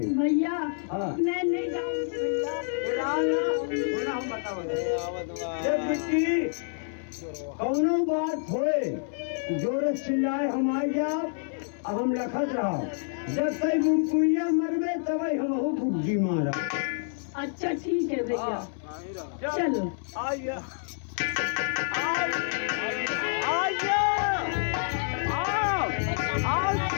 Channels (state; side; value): silent; right; 59 dB below the other